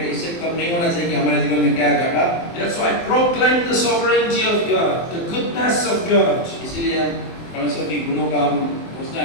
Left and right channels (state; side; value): late; right; 23 ms